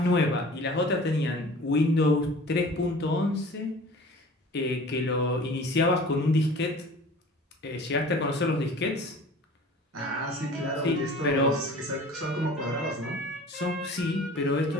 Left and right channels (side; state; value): both; normal; correlation 0.44